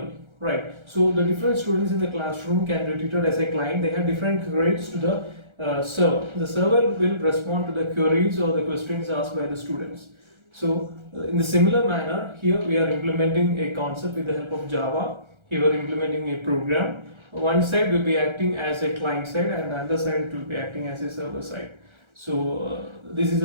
right? So the different students in the classroom can be treated as a client. They have different queries to the server. The server will respond to the queries or the questions asked by the students. So in the similar manner, here we are implementing a concept with the help of Java. Here we are implementing a program. One side will be acting as a client side, and the other side will be acting as a server side. So this is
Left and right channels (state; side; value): late; left; 1.3 ms